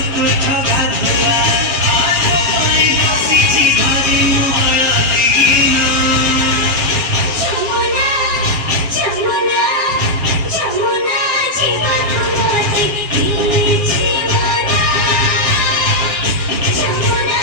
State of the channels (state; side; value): late; left; 7.3 ms